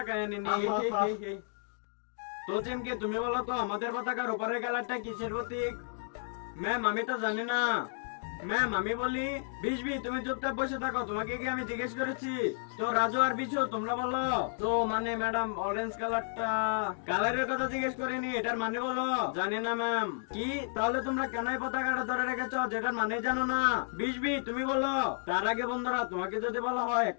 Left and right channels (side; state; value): right; silent; digital silence